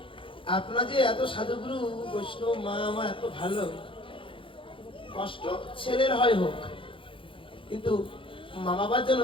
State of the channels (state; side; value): late; right; 0.25 ms